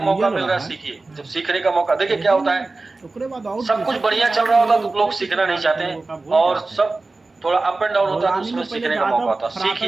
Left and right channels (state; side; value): quieter; left; 3.4 dB